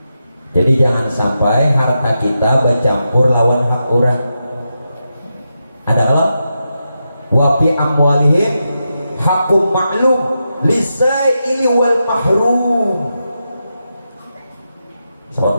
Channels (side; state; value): both; inverted; correlation -0.87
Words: Jadi jangan sampai harta kita bercampur lawan hak orang. Ada Allah wa fi amwalihim hakum ma'lum lisaili wal mahrum. Sahabat